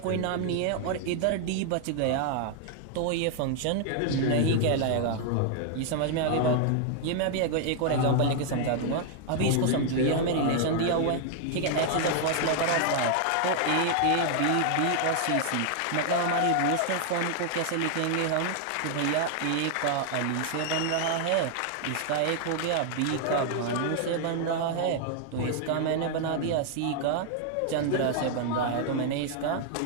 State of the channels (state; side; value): different; both; correlation 0.00